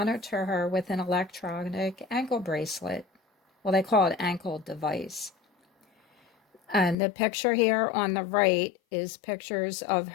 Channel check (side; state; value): right; drops out; at 7.0 s